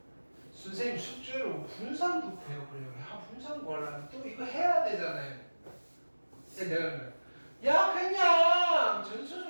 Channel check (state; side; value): inverted; both; correlation -1.00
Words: 선생님 숙제로 분산도 구해보려고 해. 분산 구하려면 또 이거 해야 되잖아요. 내가 그래요. 야 그냥